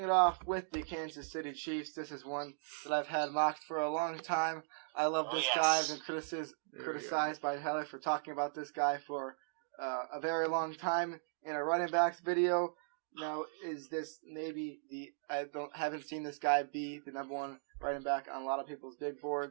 off with the Kansas City Chiefs, this is one that I've had mocked for a long time. I love this guy. I've been criticized by Heather for talking about this guy for a very long time in a running backs video. Now, is this maybe haven't seen this guy be the number one running back on a lot of people's big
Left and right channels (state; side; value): silent; left; digital silence